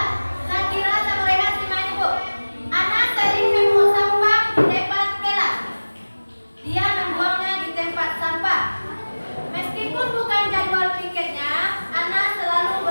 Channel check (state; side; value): inverted; both; correlation -1.00